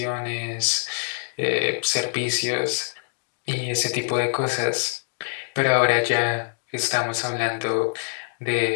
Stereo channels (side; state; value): right; silent; digital silence